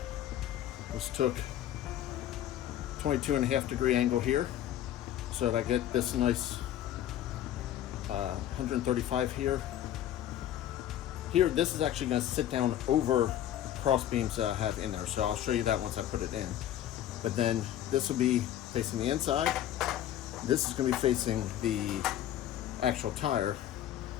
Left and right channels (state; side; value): quieter; right; 11.8 dB